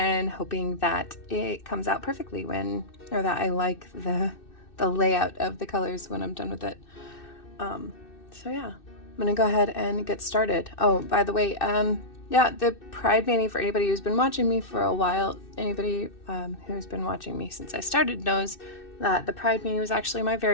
hoping that it comes out perfectly or that I like the layout of the colors when I'm done with it. So yeah, I'm gonna go ahead and get started. Oh, by the way, yeah, the Pride Mani, for anybody who's been watching me for a while, anybody who's been watching me since I started knows that the Pride Mani was actually my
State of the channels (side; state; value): right; late; 2.6 ms